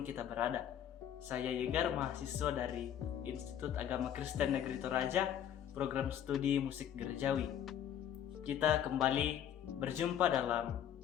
kita berada. Saya Yegar, mahasiswa dari Institut Agama Kristen Negeri Toraja, program studi musik gerejawi. Kita kembali berjumpa dalam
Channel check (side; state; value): right; quieter; 10.0 dB